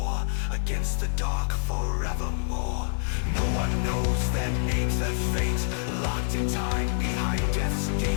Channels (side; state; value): right; silent; 60 dB below the other